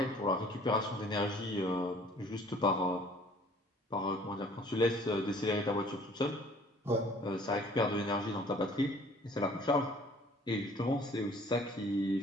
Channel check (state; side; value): normal; both; correlation 0.54